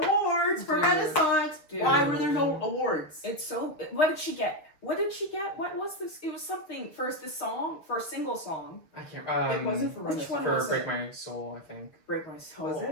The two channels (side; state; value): right; late; 6.8 ms